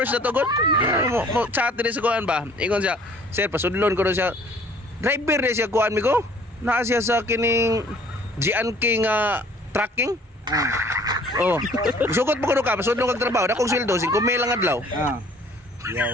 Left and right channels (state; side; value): normal; both; correlation 0.54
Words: na to god. Mo chat din sa kuan ba? Ingon siya, sir, pasudlon ko na siya. Driver ni siya kuan Migo. Naa siya sa kining Gian King tracking. Oh. Sugot mo kuno ka, pasudlon kag trabaho, dakong sweldo 5 mil lang adlaw.